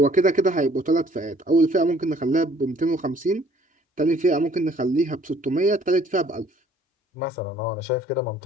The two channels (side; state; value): both; normal; correlation 0.58